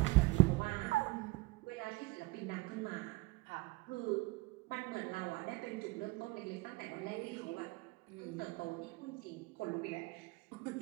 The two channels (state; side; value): quieter; left; 21.6 dB